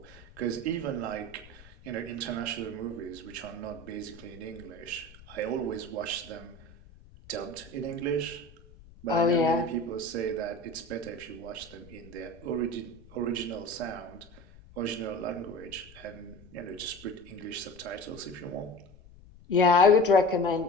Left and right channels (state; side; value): noise; left; rumble, 21 dB below the sound